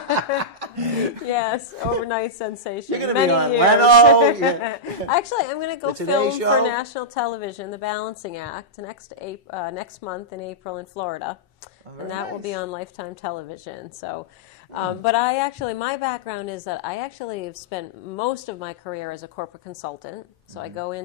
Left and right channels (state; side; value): normal; both; correlation -0.10